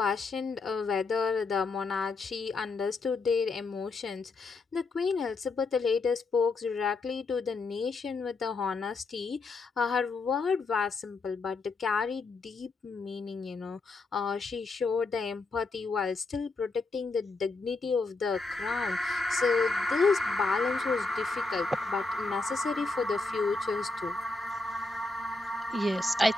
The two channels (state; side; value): quieter; right; 3.7 dB